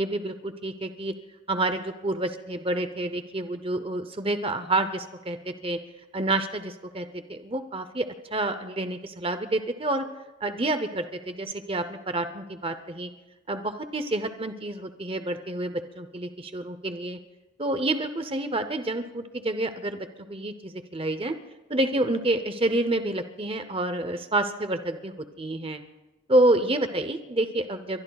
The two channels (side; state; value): both; normal; correlation 0.45